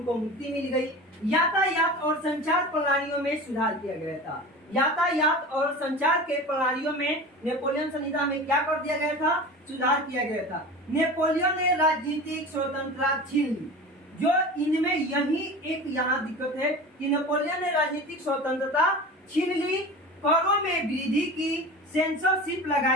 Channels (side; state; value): both; normal; correlation 0.34